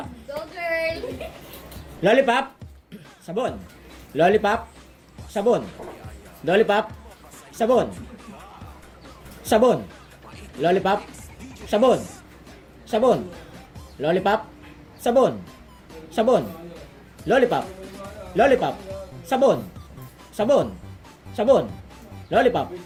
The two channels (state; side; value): identical; both; correlation 1.00